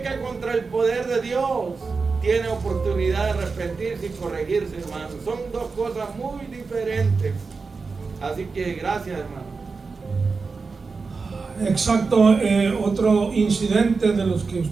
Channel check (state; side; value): quieter; left; 4.5 dB